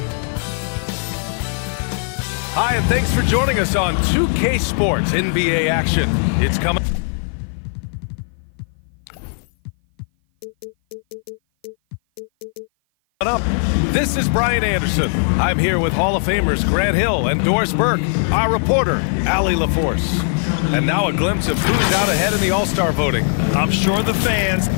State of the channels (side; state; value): right; silent; 56 dB below the other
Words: Hi, and thanks for joining us on 2K Sports NBA action. It's coming up. This is Brian Anderson. I'm here with Hall of Famers Grant Hill and Doris Burke, our reporter, Allie LaForce. And now a glimpse of who's out ahead in the All-Star voting. I'm sure the fans